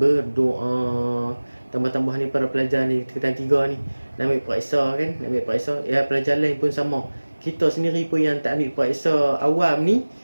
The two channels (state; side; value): inverted; both; correlation -1.00